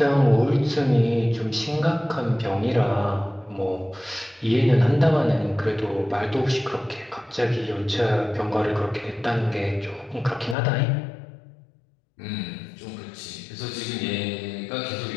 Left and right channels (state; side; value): drops out; right; at 10.6 s